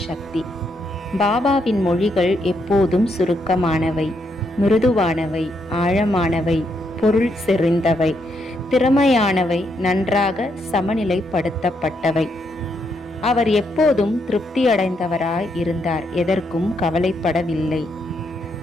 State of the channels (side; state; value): both; normal; correlation 0.77